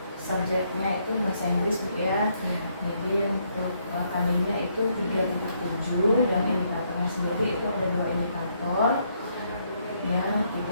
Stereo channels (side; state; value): both; inverted; correlation -0.73